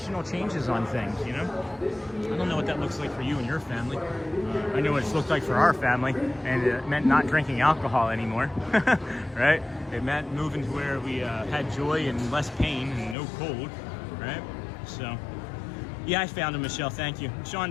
changes on things, you know? I don't know what that looks like for you and your family. I know what it's looked like for our family, and it meant not drinking alcohol anymore, right? It meant moving to where we had joy and less pain and no cold, right? So, yeah, I found him, Michelle. Thank you.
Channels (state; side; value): drops out; right; at 13.2 s